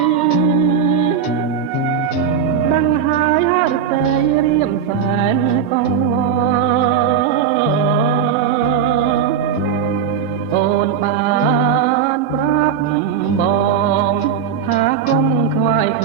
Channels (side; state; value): left; quieter; 7.5 dB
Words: ដឹងហើយហឫទ័យរៀមសែនកងអូនបានប្រាប់បងថាកុំខ្វាយខ